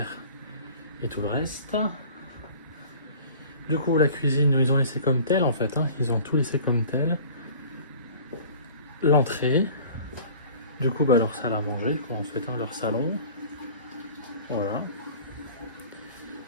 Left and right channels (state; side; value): inverted; both; correlation -0.45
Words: et tout le reste. Du coup la cuisine ils ont laissé comme telle en fait, hein. Ils ont tout laissé comme tel. L'entrée. Du coup bah leur salle à manger quoi en fait, hein, leur salon. Voilà.